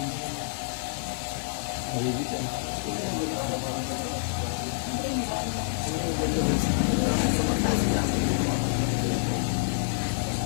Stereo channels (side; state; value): right; silent; digital silence